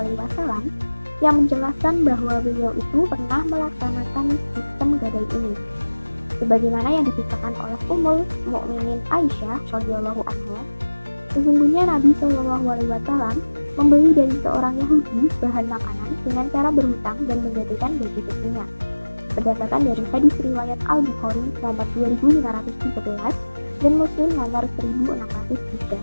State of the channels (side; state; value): both; inverted; correlation -1.00